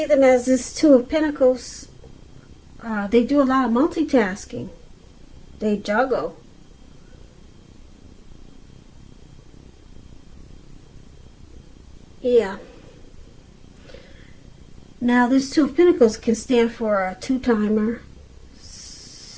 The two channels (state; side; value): identical; both; correlation 1.00